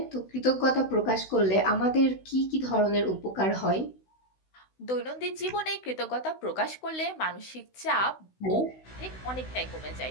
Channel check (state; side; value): late; right; 16 ms